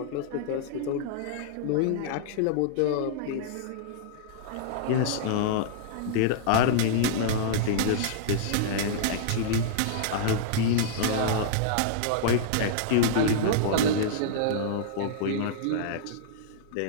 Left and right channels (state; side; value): different; both; correlation -0.02